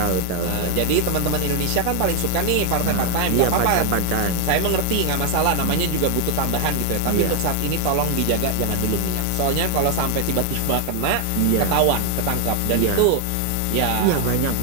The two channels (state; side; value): different; both; correlation 0.00